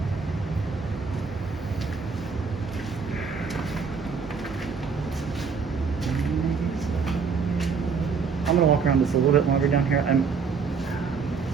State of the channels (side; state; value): left; quieter; 5.5 dB